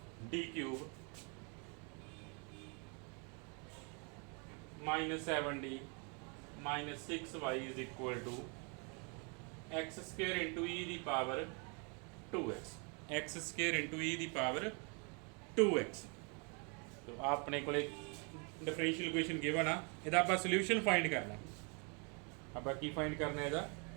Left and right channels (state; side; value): quieter; left; 35.2 dB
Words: d cube minus 7d minus 6y is equal to x square into e the power 2x x square into e the power 2x तो आपने को डिफरेंशियल इक्वेशन गिवन आ ਇਹਦਾ ਆਪਾਂ ਸੋਲੂਸ਼ਨ ਫਾਈਂਡ ਕਰਨਾ ਆਪਾਂ ਕੀ ਫਾਈਂਡ ਕਰਨਾ ਇਹਦਾ